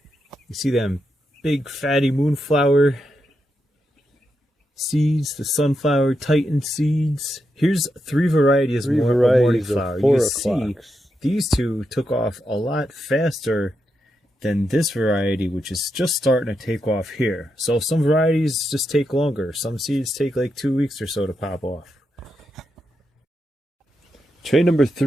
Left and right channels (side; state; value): both; normal; correlation 0.85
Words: You see them big fatty moonflower seeds, the sunflower titan seeds. Here's 3 varieties more of morning flower. You can see these 2 took off a lot faster than this variety, which is just starting to take off here. So some varieties just take longer. Some seeds take like 2 weeks or so to pop off. Tray number